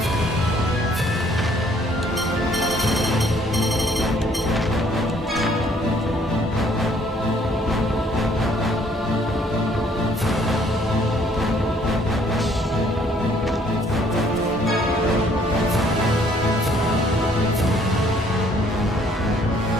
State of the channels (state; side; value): normal; both; correlation 0.63